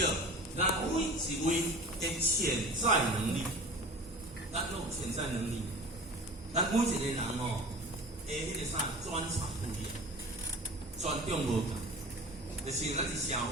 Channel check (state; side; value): normal; both; correlation 0.38